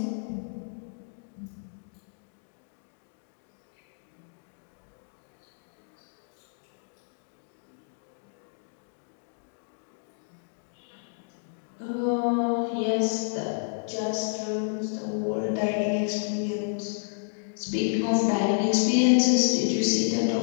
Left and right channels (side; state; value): right; silent; digital silence